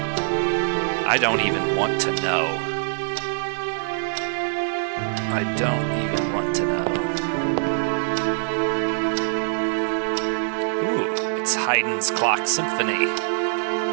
I don't even want to know. I don't even want to know. Ooh, it's Haydn's Clock Symphony.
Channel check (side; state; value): left; silent; 55 dB below the other